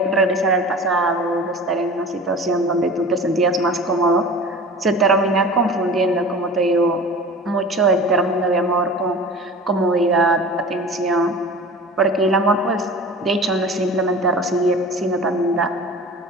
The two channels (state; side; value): normal; both; correlation 0.38